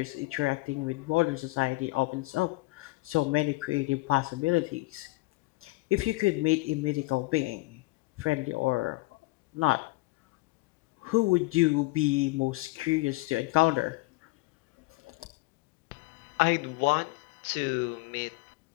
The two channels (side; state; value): right; quieter; 22.7 dB